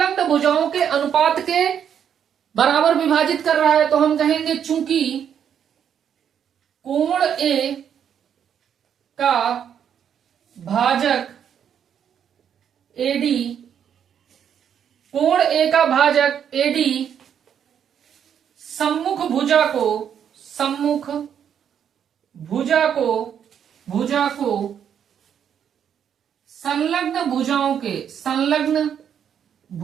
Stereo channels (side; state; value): left; quieter; 8.5 dB